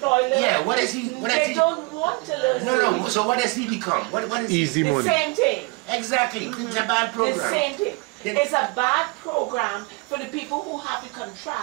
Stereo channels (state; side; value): quieter; left; 28.0 dB